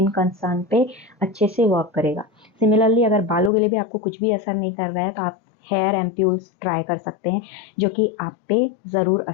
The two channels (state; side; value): drops out; right; at 3.5 s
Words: कंसर्न पे अच्छे से वर्क करेगा। सिमिलरली अगर बालों के लिए भी आपको कुछ भी असर नहीं कर रहा है तो आप हेयर एम्प्यूल्स ट्राई कर सकते हैं, जो कि आप पे ज़रूर